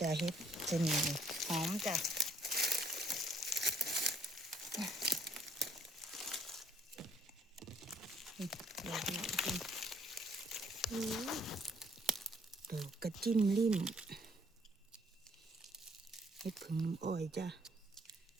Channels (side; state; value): both; normal; correlation 0.64